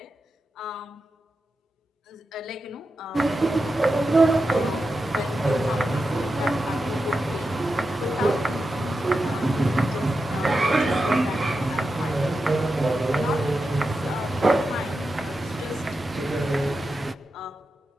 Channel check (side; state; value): both; normal; correlation 0.90